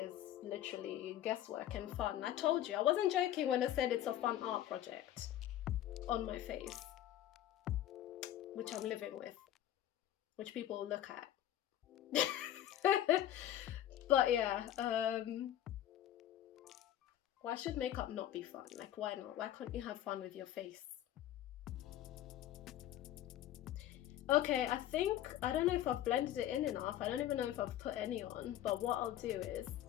literally guesswork and fun. I told you, I wasn't joking when I said it's a fun art project on my face, which I'm living with, which people look at. But yeah, why should makeup not be fun? Like, why not? Why can't you have fun with your face? Okay, I don't know if I've blended it in enough. I don't even know if I've put any on, but what I'll do is,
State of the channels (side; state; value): right; quieter; 12.2 dB